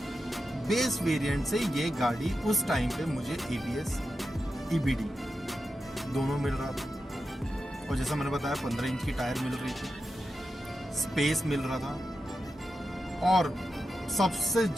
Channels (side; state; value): both; normal; correlation 0.90